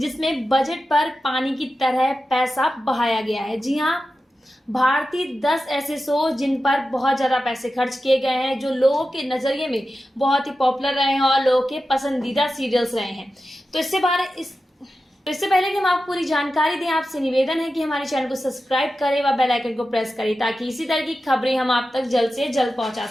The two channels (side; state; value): both; normal; correlation 0.92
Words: बजट पर पानी की तरह पैसा बहाया गया है। जी हाँ, भारतीय 10 ऐसे शो जिन पर बहुत ज़्यादा पैसे खर्च किए गए हैं, जो लोगों के नज़रिए में बहुत ही पॉपुलर रहे हैं और लोगों के पसंदीदा सीरियल्स रहे हैं। तो इससे पहले कि हम आपको पूरी जानकारी दें, आपसे निवेदन है कि हमारे चैनल को सब्सक्राइब करें व बेल आइकन को प्रेस करें ताकि इसी तरह की खबरें हम आप तक जल्द से जल्द पहुंचा